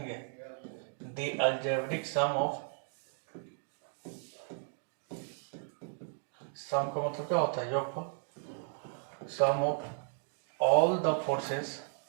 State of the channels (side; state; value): left; silent; 55 dB below the other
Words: द अलजेब्रिक सम ऑफ, सम का मतलब क्या होता है, योगफल, सम of all the